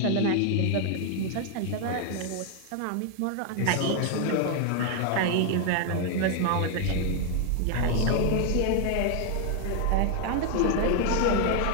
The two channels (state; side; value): different; both; correlation 0.00